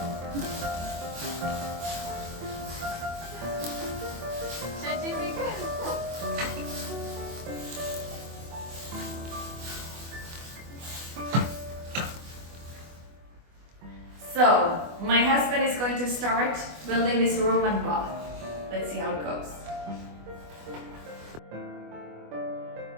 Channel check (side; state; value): left; late; 24 ms